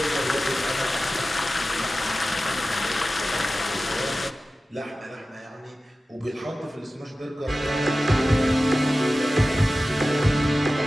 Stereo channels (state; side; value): normal; both; correlation 0.95